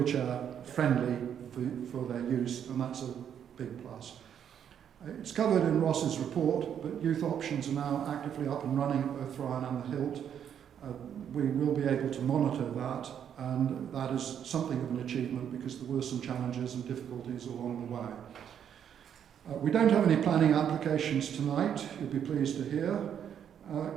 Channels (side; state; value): left; quieter; 8.9 dB